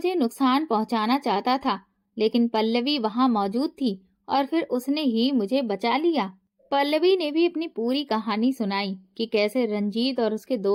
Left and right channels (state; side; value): identical; both; correlation 1.00